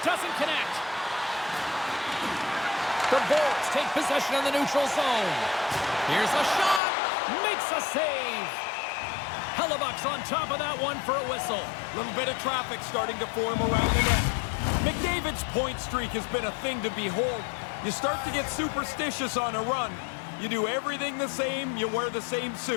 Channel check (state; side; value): drops out; right; at 6.8 s